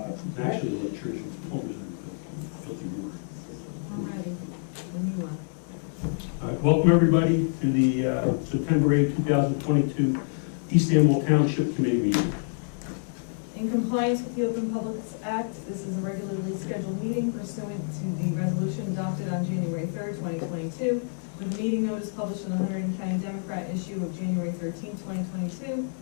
Actually, the church and plumbers are filthy water. I'm ready. When you are. All right, welcome everybody to the September 8, 2022 East Amwell Township Committee meeting. In compliance with the Open Publics Act, this is a regularly scheduled meeting pursuant to the resolution adopted on January 3rd, 2022, with the meeting notice published in the Hunterdon County Democrat issue of January 13, 2022.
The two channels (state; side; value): silent; right; digital silence